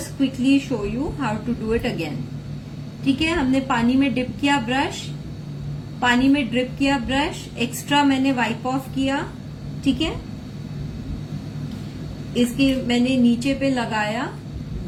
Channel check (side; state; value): both; identical; correlation 1.00